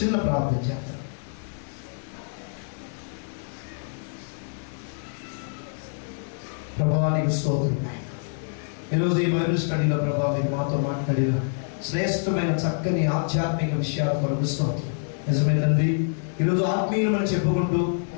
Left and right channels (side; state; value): right; silent; digital silence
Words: ప్రార్థన చేద్దాం. ప్రభువా నీకు స్తోత్రం. ఈరోజు ఈ బైబిల్ స్టడీలో ప్రభా మీరు మాతో మాట్లాడిన శ్రేష్టమైన చక్కని ఆధ్యాత్మిక విషయాల కొరకు స్తోత్రం. నిజమే తండ్రి, ఈరోజు ఆత్మీయులమని చెప్పుకుంటూ